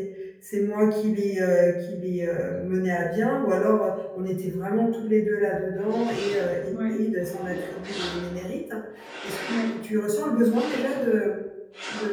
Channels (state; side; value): identical; both; correlation 1.00